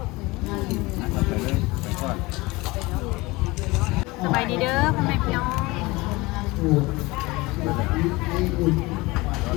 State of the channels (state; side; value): quieter; right; 22.4 dB